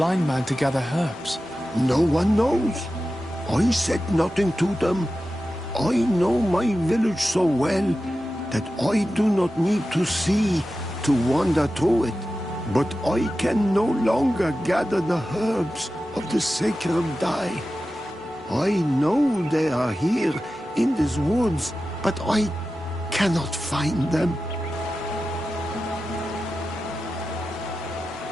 man to gather herbs? No one knows. I said nothing to them. I know my village so well that I do not need to see to wander through it. But I can no longer gather the herbs of the sacred dye. I know they are here in these woods, but I cannot find them.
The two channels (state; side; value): normal; both; correlation 0.93